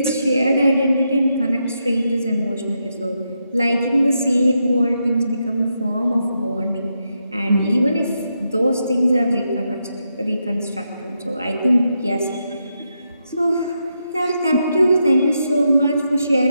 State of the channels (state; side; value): inverted; both; correlation -0.83